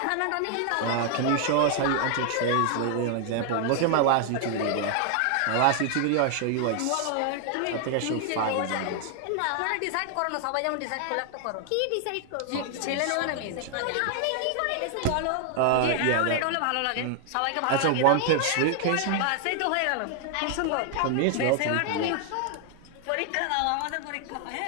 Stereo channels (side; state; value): both; different; correlation 0.00